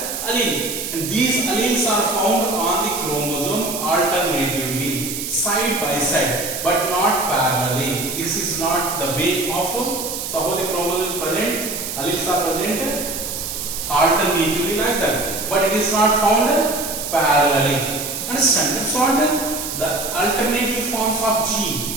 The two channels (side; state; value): right; noise; hiss, 5 dB below the sound